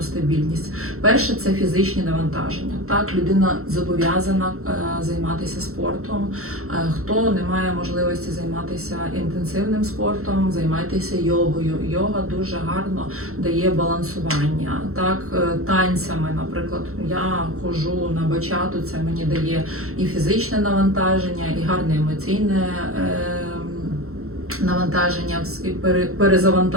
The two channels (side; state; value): left; late; 0.63 ms